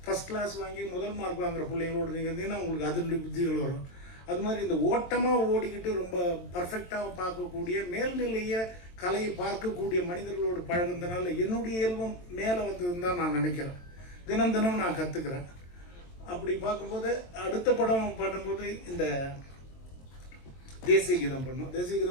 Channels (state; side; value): late; right; 23 ms